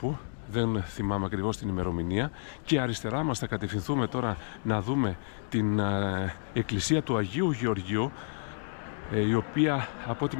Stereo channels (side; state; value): right; silent; 58 dB below the other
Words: δεν θυμάμαι ακριβώς την ημερομηνία, και αριστερά μας θα κατευθυνθούμε τώρα να δούμε την εκκλησία του Αγίου Γεωργίου, η οποία από ό,τι